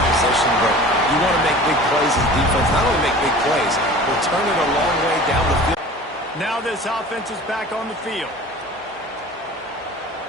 position, but you want to make big plays as defense. Not only make big plays, but turn it a long way down the field. Now this offense is back on the field.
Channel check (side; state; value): both; normal; correlation 0.41